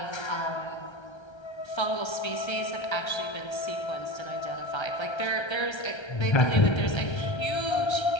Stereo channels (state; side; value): late; right; 1.3 ms